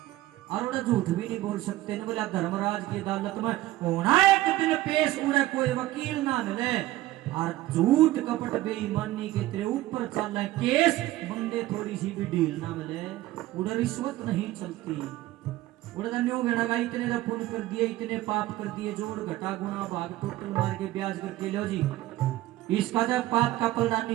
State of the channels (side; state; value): left; quieter; 16.2 dB